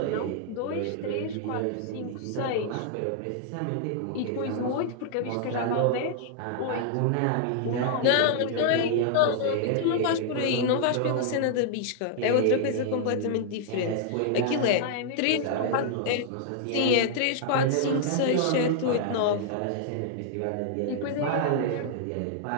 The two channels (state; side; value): different; both; correlation -0.01